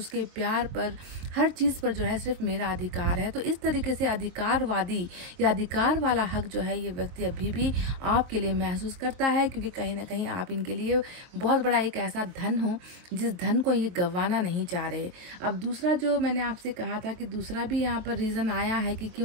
प्यार पर, हर चीज़ पर जो है सिर्फ मेरा अधिकार है। तो इस तरीके से अधिकारवादी या अधिकार वाला हक जो है ये व्यक्ति अभी भी आपके लिए महसूस करता है, क्योंकि कहीं ना कहीं आप इनके लिए बहुत बड़ा एक ऐसा धन हो जिस धन को ये गंवाना नहीं चाह रहे। अब दूसरा जो मैंने आपसे कहा था कि दूसरा भी यहाँ पर रीज़न आया है कि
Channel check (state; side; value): late; left; 23 ms